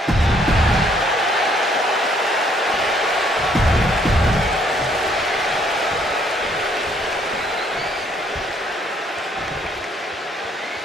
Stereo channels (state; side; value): normal; both; correlation 0.66